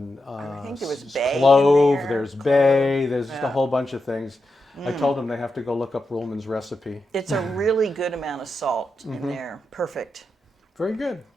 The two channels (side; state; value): both; normal; correlation 0.87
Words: I think there was bay in clove. there. There's bay. There's just a Yeah. whole bunch of things. I told them they have to go look up Ruhlman's recipe. It's a really good amount of salt in there. Perfect. Very good.